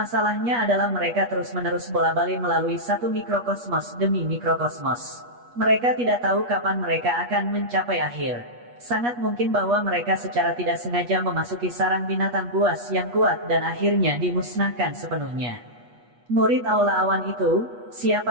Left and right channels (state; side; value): late; left; 8.3 ms